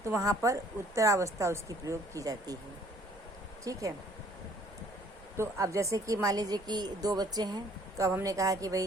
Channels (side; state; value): both; normal; correlation 0.58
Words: तो वहाँ पर उत्तरावस्था उसकी प्रयोग की जाती है। ठीक है। तो अब जैसे कि मान लीजिए कि दो बच्चे हैं, तो अब हमने कहा कि